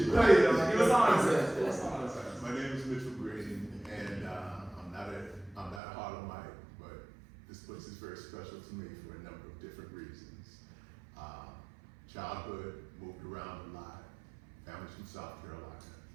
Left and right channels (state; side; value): drops out; left; at 5.8 s